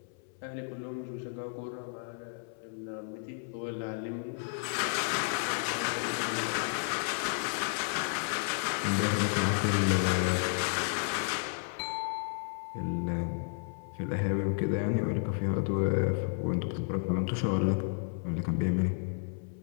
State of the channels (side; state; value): right; silent; 56 dB below the other